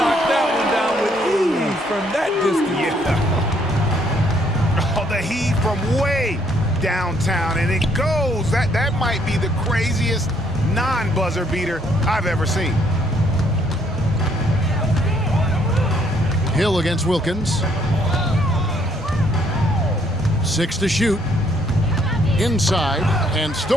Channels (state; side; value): normal; both; correlation 0.68